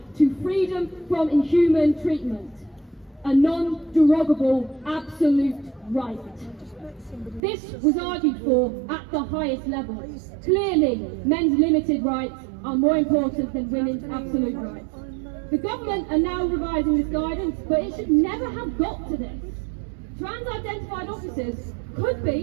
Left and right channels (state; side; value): drops out; left; at 7.4 s